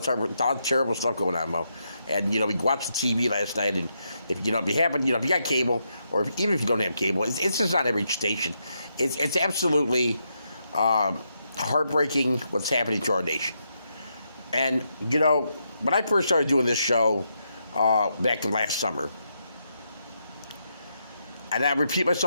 terrible stuff going on, Mo. And we watched the TV last night, and if you haven't, if you got cable, or even if you don't have cable, it's just not every station. It's absolutely heartbreaking what's happening to our nation. And when I first started doing this show back in last summer. And I repeat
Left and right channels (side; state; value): both; inverted; correlation -0.81